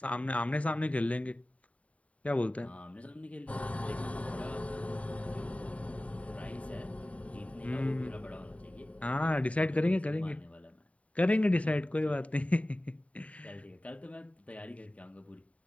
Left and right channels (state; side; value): late; right; 0.067 ms